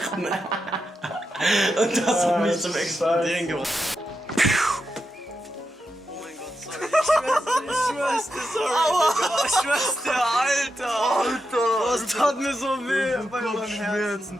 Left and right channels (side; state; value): both; normal; correlation 0.87